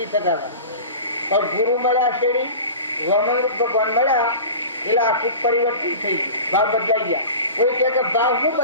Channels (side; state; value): both; inverted; correlation -0.35